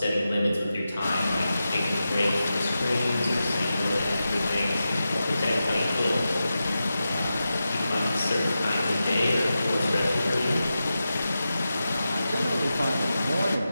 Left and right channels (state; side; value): inverted; both; correlation -0.91